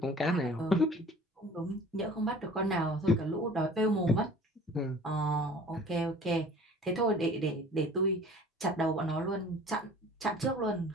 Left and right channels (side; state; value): both; normal; correlation 0.47